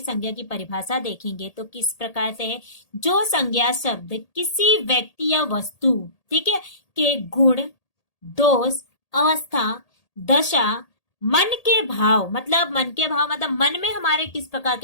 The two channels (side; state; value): right; late; 1.8 ms